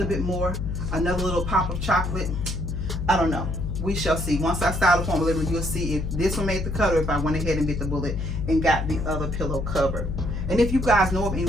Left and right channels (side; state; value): left; noise; hum, 3 dB below the sound